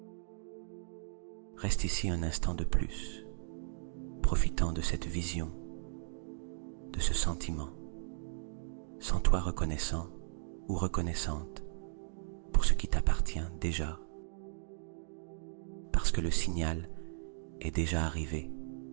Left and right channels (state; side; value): silent; left; digital silence